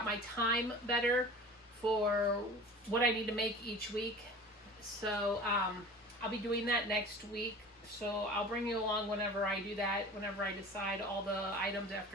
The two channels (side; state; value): both; normal; correlation 0.40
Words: my time better for what I need to make each week. So I'll be doing that next week. So I'll bring you along whenever I do that, whenever I decide all the items